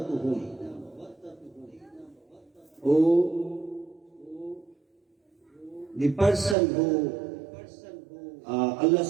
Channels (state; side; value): drops out; left; at 6.6 s